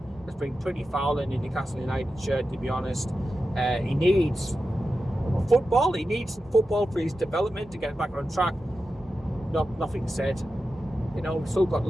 it's been pretty foul in the Newcastle United shirt, to be honest. He needs football. He needs football for his development to get back on track. Nothing said. We've still got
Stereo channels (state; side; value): normal; both; correlation 0.91